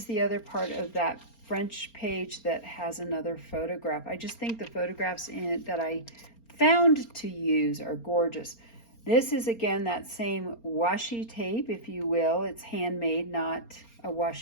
the other part of that French page that has another photograph. I just think the photographs in it that I found to use are gorgeous. This is again that same washi tape, if you will. It's handmade, not a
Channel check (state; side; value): late; right; 4.3 ms